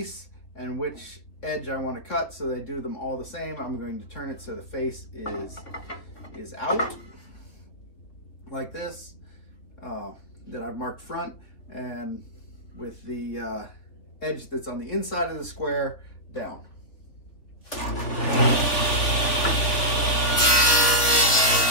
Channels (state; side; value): late; right; 3.7 ms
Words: and which edge I want to cut, so they do them all the same. I'm going to turn it so the face is out, like this, that I've marked front, and with the edge that's on the inside of the square down.